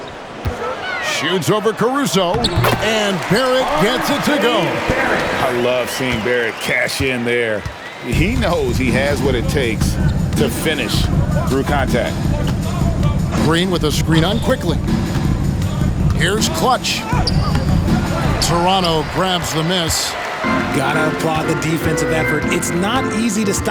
Shoots over Caruso. And Barrett gets it to go. I love seeing Barrett cash in there. He knows he has what it takes to finish through contact. Green with a screen on quickly. Here's Clutch. Toronto grabs the miss. Gotta applaud the defensive effort. It's not easy to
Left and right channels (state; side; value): identical; both; correlation 1.00